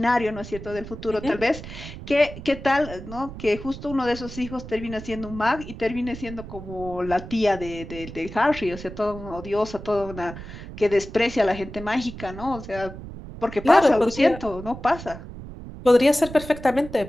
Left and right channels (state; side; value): noise; right; rumble, 12 dB below the sound